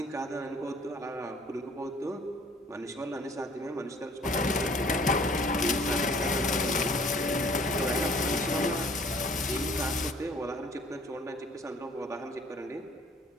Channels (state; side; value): normal; both; correlation 0.55